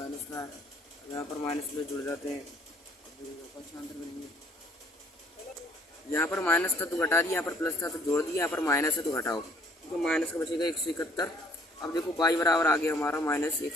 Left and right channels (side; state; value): both; normal; correlation 0.61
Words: का है, यहाँ पर माइनस प्लस जुड़ जाते हैं, यहाँ पर माइनस था तो घटा दिया, यहाँ पर प्लस था तो जोड़ दिया, यहाँ पर माइनस है तो घटाओ, तो माइनस का बचेगा 171। अब देखो y बराबर आ गया हमारा माइनस